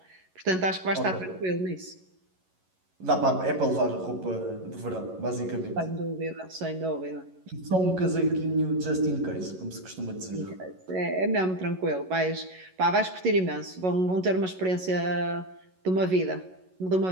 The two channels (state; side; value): late; left; 11 ms